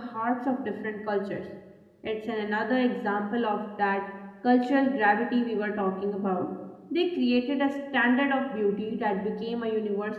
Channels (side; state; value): both; identical; correlation 1.00